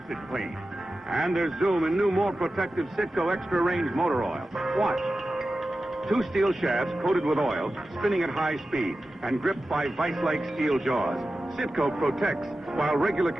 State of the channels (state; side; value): normal; both; correlation 0.93